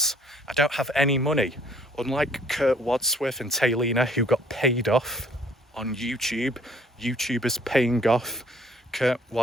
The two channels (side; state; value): both; normal; correlation 0.60